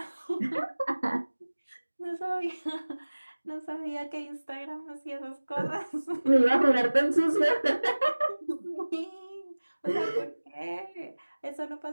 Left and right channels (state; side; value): inverted; both; correlation -1.00